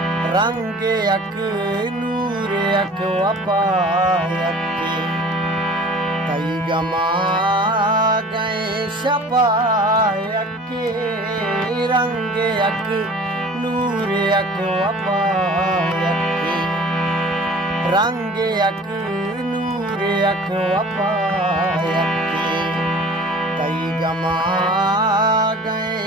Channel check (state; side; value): normal; both; correlation 0.45